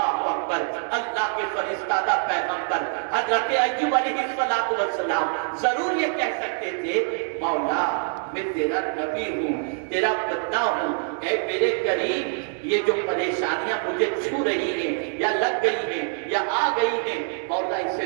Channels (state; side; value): silent; left; 62 dB below the other